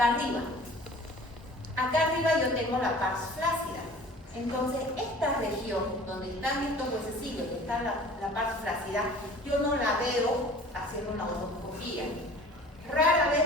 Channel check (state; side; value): normal; both; correlation 0.46